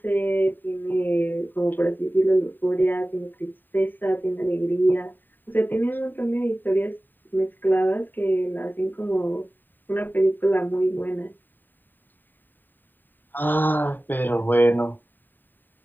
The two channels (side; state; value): right; late; 0.091 ms